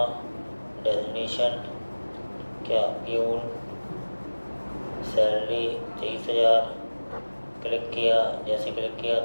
डेजिग्नेशन क्या प्यून, सैलरी 23,000। क्लिक किया, जैसे क्लिक किया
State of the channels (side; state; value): both; inverted; correlation -1.00